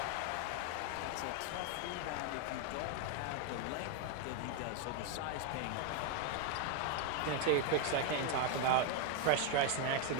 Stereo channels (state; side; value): different; both; correlation 0.01